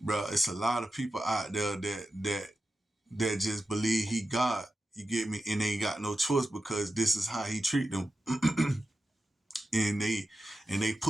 it's a lot of people out there that just believe he God. You get me? And they ain't got no choice because this is how he treat them. and they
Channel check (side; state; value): both; normal; correlation 0.91